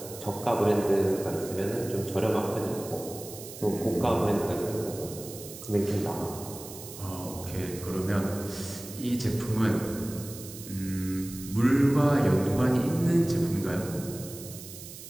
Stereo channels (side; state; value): right; noise; hiss, 13 dB below the sound